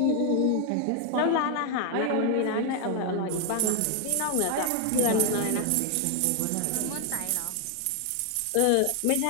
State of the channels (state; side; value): different; both; correlation 0.01